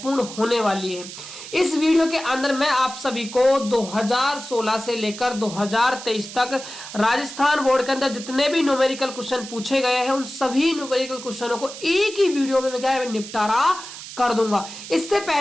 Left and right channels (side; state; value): right; noise; hiss, 12 dB below the sound